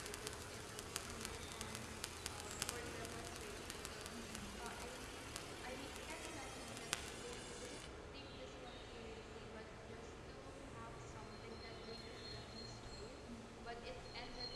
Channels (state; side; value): identical; both; correlation 1.00